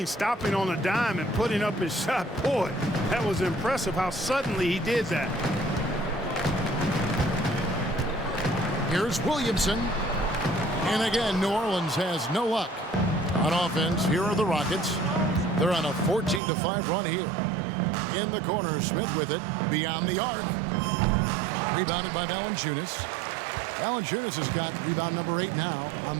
stopping on a dime and putting up his shot. Boy, that was impressive how suddenly he did that. Here's Williamson. And again, New Orleans has no luck. On offense, here are the Rockets. They're on a 14-5 run here. In the corner, Smith with it. Beyond the arc. Rebounded by Valanciunas. Valanciunas has got rebound number 8 now on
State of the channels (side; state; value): left; drops out; at 16.4 s